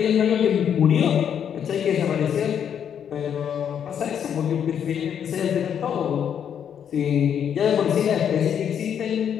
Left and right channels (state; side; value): quieter; right; 8.5 dB